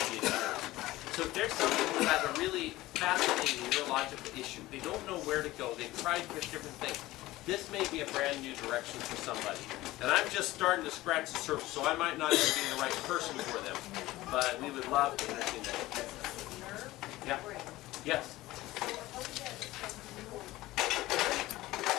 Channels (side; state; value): right; quieter; 17.6 dB